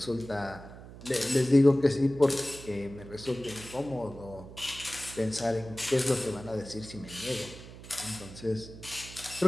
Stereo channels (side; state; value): right; noise; hum, 15 dB below the sound